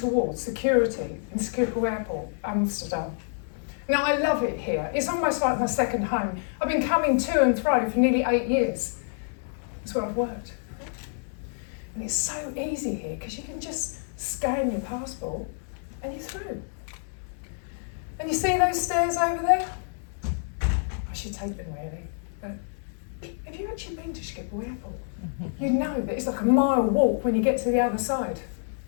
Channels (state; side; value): silent; right; digital silence